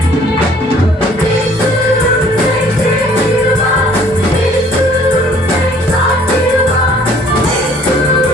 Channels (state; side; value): normal; both; correlation 0.57